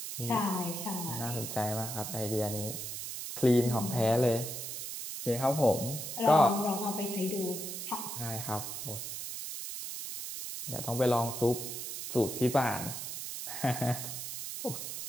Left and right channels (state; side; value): noise; right; hiss, 6 dB below the sound